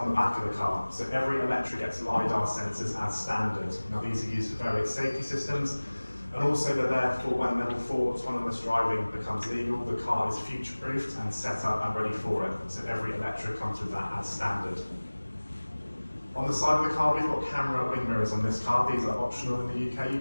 the back of the car. So every Eletre gets LiDAR sensors as standard. Now these are used for various safety systems, and also they're there for when level 4 autonomous driving becomes legal, the car is future-proofed and set up and ready for it. So every Eletre comes with that as standard. On the side of the car, we've got camera wing mirrors on this car. These are optional in the UK. You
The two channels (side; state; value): both; inverted; correlation -1.00